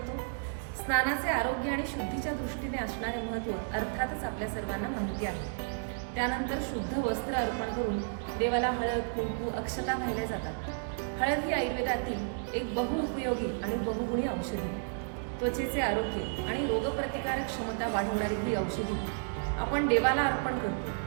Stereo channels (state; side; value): silent; left; digital silence